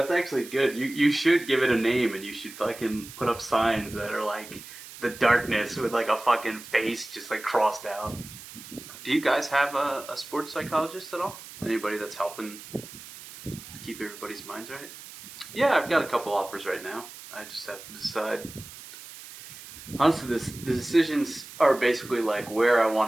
actually good. You should give it a name, and you should fucking put up signs that are like the darkness with like a fucking face just like crossed out. Do you guys have a sports psychologist at all? Anybody that's helping keep everybody's minds right? Yeah, I've got a couple offers right now. I just have to decide. Honestly, the decisions are basically like where I want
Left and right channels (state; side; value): noise; right; hiss, 15 dB below the sound